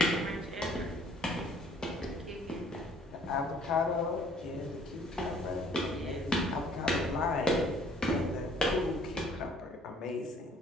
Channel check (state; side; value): normal; both; correlation 0.58